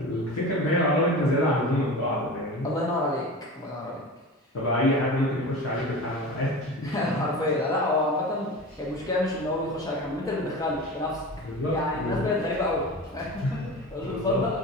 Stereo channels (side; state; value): both; normal; correlation 0.31